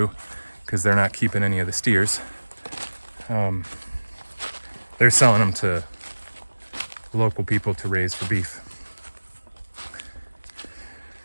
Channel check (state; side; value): inverted; both; correlation -1.00